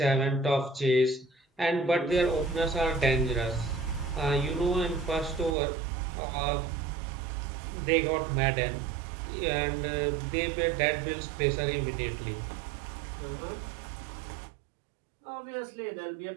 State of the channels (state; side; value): drops out; left; at 5.6 s